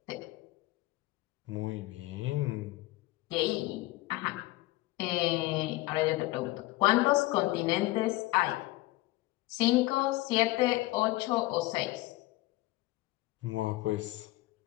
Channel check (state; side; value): quieter; right; 19.7 dB